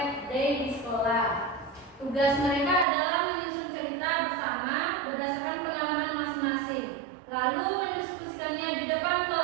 day di sekolah. Tugas mereka adalah menyusun cerita bersama berdasarkan pengalaman masing-masing, lalu mendiskusikannya di depan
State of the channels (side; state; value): left; drops out; at 2.9 s